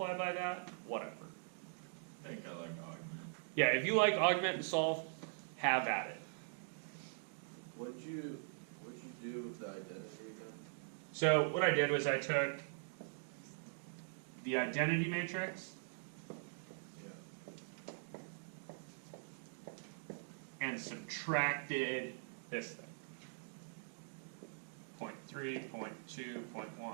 by that, whatever. I think I like augment. Yeah, if you like augment and solve, have at it. What'd you do with the identity again? So what I did was I took the identity matrix Yeah. and subtracted this thing. 0.3, 0.2, 0.1,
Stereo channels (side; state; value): left; silent; digital silence